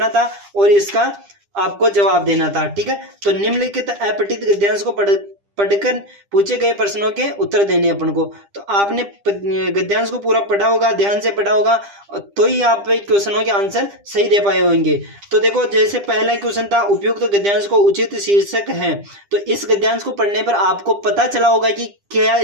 था और इसका आपको जवाब देना था, ठीक है। तो निम्नलिखित अपठित गद्यांश को पढ़कर पूछे गए प्रश्नों के उत्तर देने अपन को। तो आपने गद्यांश को पूरा पढ़ा होगा, ध्यान से पढ़ा होगा, तो ही आप क्वेश्चनों के आंसर सही दे पाए होंगे। तो देखो, जैसे पहला क्वेश्चन था उपयुक्त गद्यांश को उचित शीर्षक है। तो इस गद्यांश को पढ़ने पर आपको पता चला होगा कि क्या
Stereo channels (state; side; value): late; left; 10 ms